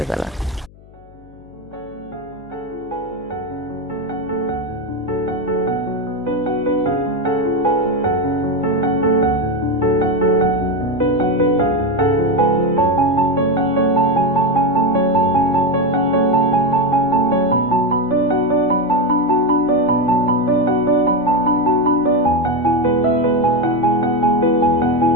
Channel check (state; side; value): noise; left; hum, 24 dB below the sound